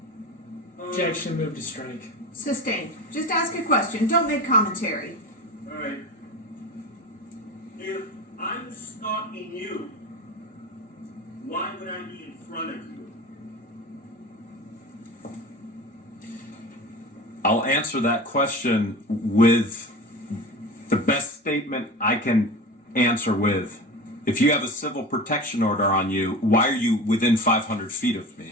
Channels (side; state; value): both; normal; correlation 0.32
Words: Objection, move to strike. Sustained. Just ask a question. Don't make commentary. Alright. If I'm stalking you, why would I be in front of you? I'll answer that question with the best statement I can answer with. If you have a civil protection order on you, why are you within 500 feet of